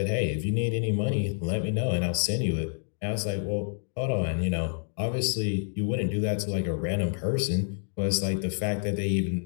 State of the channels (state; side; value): silent; right; digital silence